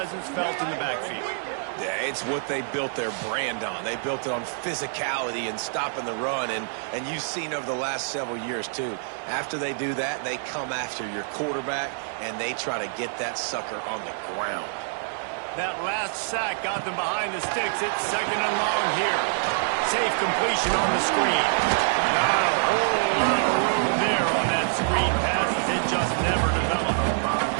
felt in the backfield. Yeah, it's what they built their brand on. They built it on physicality and stopping the run, and you've seen over the last several years, too. After they do that, they come after your quarterback, and they try to get that sucker on the ground. That last sack got them behind the sticks. It's second and long here. Safe completion on the screen. Not a whole lot of room there on that screen pass as it just never developed.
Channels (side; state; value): left; silent; 61 dB below the other